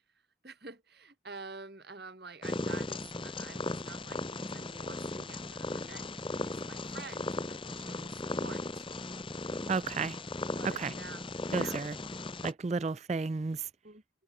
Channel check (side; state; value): both; normal; correlation 0.52